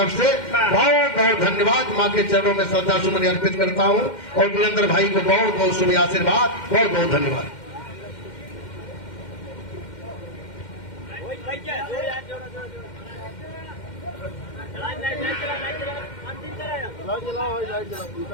से बहुत बहुत धन्यवाद। माँ के चरणों में श्रद्धा सुमन अर्पित करता हूँ और वीरेंद्र भाई को बहुत बहुत शुभ आशीर्वाद, बहुत बहुत धन्यवाद।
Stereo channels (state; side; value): late; right; 2.1 ms